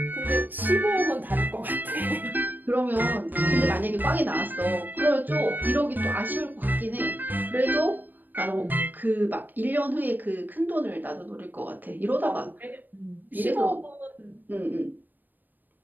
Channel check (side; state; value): left; late; 0.089 ms